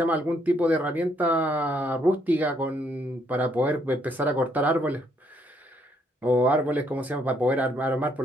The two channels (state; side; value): normal; both; correlation 0.70